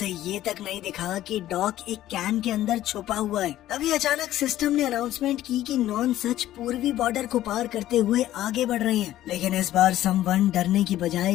ये तक नहीं दिखा कि डॉक एक कैन के अंदर छुपा हुआ है। तभी अचानक सिस्टम ने अनाउंसमेंट की कि नॉन सच पूर्वी बॉर्डर को पार करते हुए आगे बढ़ रहे हैं। लेकिन इस बार समवन डरने की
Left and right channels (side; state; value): right; quieter; 13.7 dB